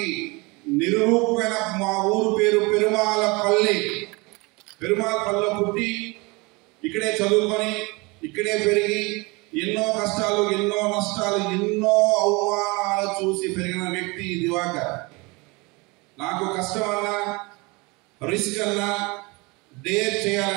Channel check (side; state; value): left; quieter; 26.4 dB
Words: నిరూపమైన మా ఊరు పేరు పెరుమాళపల్లి. పెరుమాళపల్లిలో పుట్టి ఇక్కడే చదువుకొని ఇక్కడే పెరిగి ఎన్నో కష్టాలు, ఎన్నో నష్టాలు, ఎన్నో అవమానాలు చూసి పెరిగిన వ్యక్తి దివాకర్. నాకు కష్టం అన్నా, రిస్క్ అన్నా, డేర్